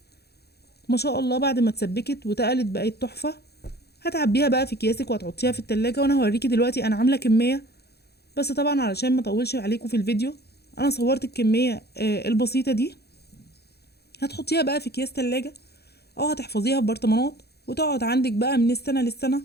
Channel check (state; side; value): late; right; 0.47 ms